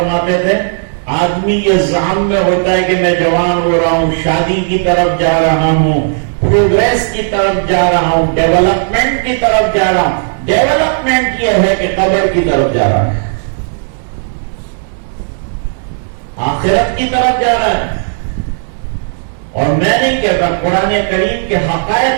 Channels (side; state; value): left; silent; digital silence